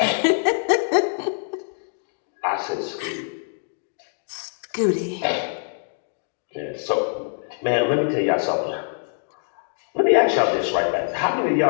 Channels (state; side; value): silent; right; digital silence